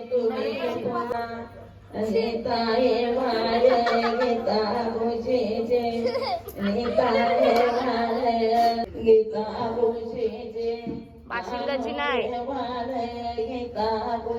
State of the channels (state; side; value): identical; both; correlation 1.00